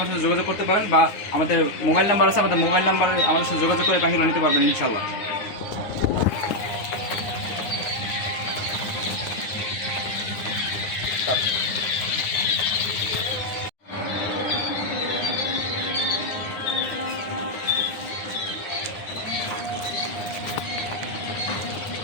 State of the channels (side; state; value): right; late; 9.7 ms